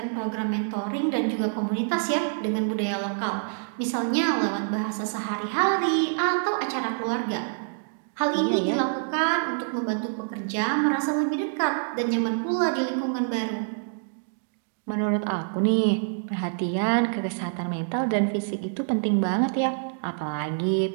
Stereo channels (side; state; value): left; silent; digital silence